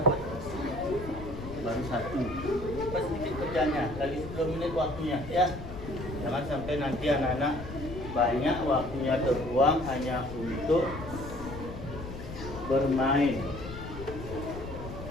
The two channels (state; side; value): noise; left; rumble, 10 dB below the sound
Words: dapat? Baru 1. Pas sedikit kerjanya, lagi 10 menit waktunya ya. Jangan sampai nanti anak-anak banyak waktunya terbuang hanya untuk bermain.